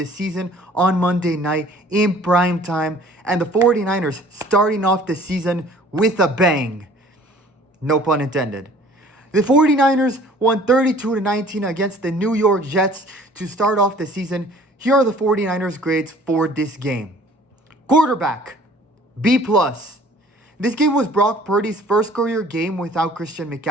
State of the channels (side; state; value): both; normal; correlation 0.52